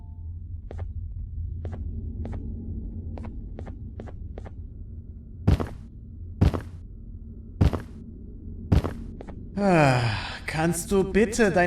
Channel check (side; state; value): both; identical; correlation 1.00